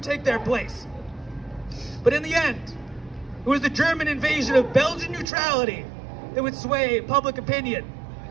take their place. But in the end, it was the German invasion of Belgian neutrality that would sway public opinion.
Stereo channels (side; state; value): left; drops out; at 5.2 s